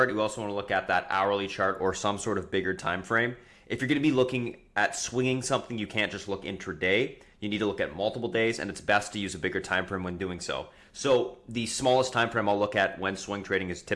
We also want to look at that hourly chart or some sort of bigger time frame. If you're going to be looking at swinging something, you can't just look intraday. You need to look at multiple days, and it's best to use a bigger time frame when doing so. So the smallest time frame I'll look at when swing trading is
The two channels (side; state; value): both; identical; correlation 1.00